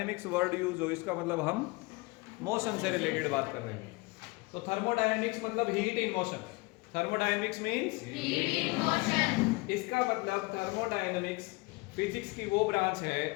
वर्ड यूज हो इसका मतलब हम मोशन से रिलेटेड बात कर रहे हैं। तो थर्मोडायनेमिक्स मतलब heat in motion. Thermodynamics means heat in motion. इसका मतलब थर्मोडायनेमिक्स फिजिक्स की वो ब्रांच है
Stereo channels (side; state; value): right; quieter; 25.1 dB